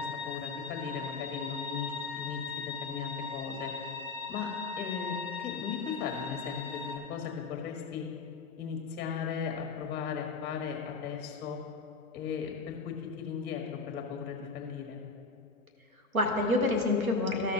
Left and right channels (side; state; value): right; quieter; 4.0 dB